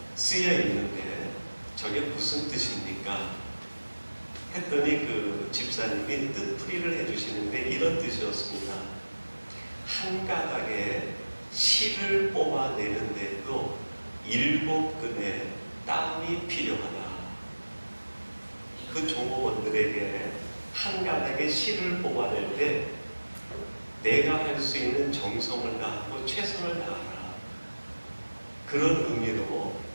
쓰여 있는데 저게 무슨 뜻입니까? 했더니 그 집사님이 뜻풀이를 해주시는데 이런 뜻이었습니다. 한 가닥에 실을 뽑아내는데도 7근의 땀이 필요하다. 그 종업원들에게 한 가닥의 실을 뽑아낼 때 내가 할 수 있는 정성을 다하고 최선을 다하라. 그런 의미로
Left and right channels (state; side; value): inverted; both; correlation -1.00